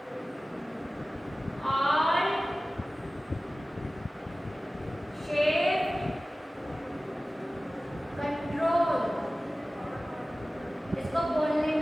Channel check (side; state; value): both; normal; correlation 0.97